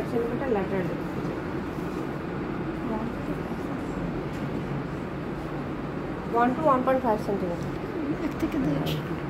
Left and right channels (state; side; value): identical; both; correlation 1.00